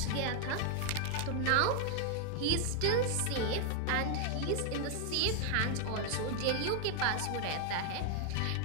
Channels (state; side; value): different; both; correlation 0.00